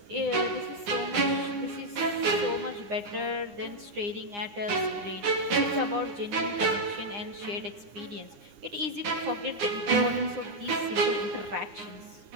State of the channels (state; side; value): late; left; 9.8 ms